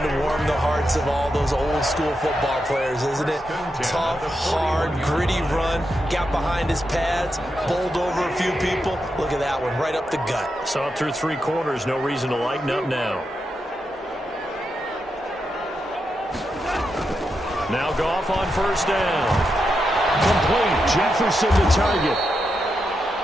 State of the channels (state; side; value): normal; both; correlation 0.86